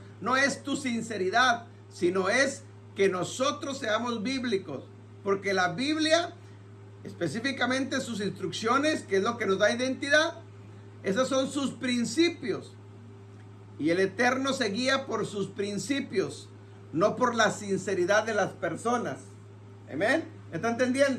no es tu sinceridad, sino es que nosotros seamos bíblicos. Porque la Biblia, específicamente sus instrucciones, que es lo que nos da identidad, esos son sus principios. Y el Eterno se guía por sus principios, no por la sinceridad de las personas. Amén. ¿Está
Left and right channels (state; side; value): identical; both; correlation 1.00